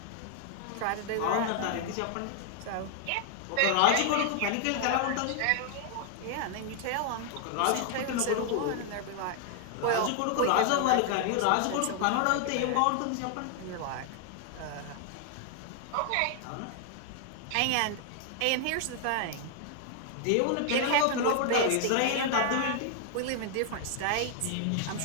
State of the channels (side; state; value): both; different; correlation 0.00